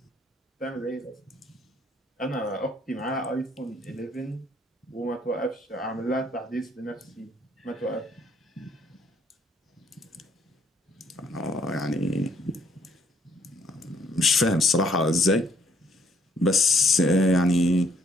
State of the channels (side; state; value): both; normal; correlation 0.66